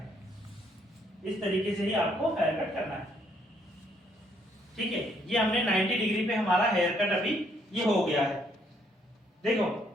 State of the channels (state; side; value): normal; both; correlation 0.69